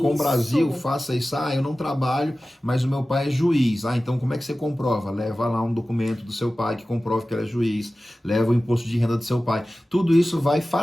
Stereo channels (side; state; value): both; normal; correlation 0.96